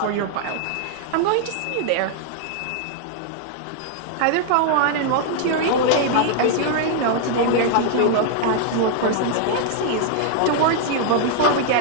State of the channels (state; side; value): different; both; correlation -0.01